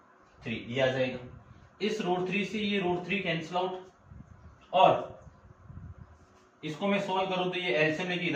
3, ये आ जाएगा। इस रूट 3 से ये रूट 3 कैंसिल आउट, और इसको मैं सोल्व करूं तो ये एलसीएम लेके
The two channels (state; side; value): identical; both; correlation 1.00